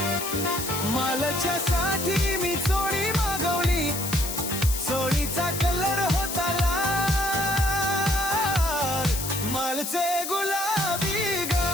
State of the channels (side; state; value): left; noise; hiss, 5 dB below the sound